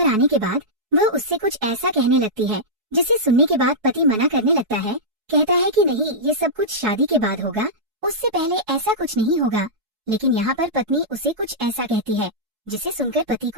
आने के बाद वह उससे कुछ ऐसा कहने लगती है जिसे सुनने के बाद पति मना करने लगता है। कहता है कि नहीं, ये सब कुछ शादी के बाद होगा, उससे पहले ऐसा कुछ नहीं होगा। लेकिन यहाँ पर पत्नी उसे कुछ ऐसा कहती है जिसे सुनकर पति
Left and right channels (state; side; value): late; left; 4.7 ms